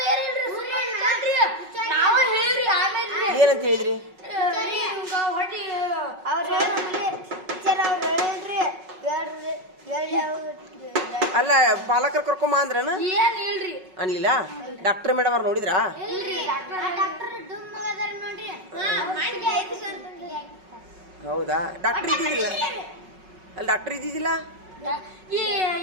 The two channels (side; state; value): left; late; 5.4 ms